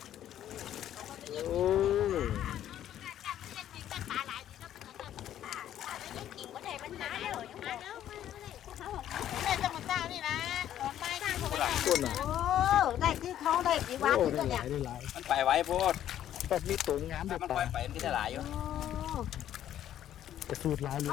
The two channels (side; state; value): right; quieter; 11.3 dB